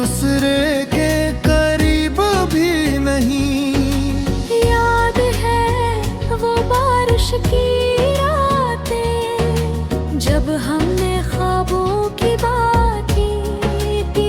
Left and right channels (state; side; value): identical; both; correlation 1.00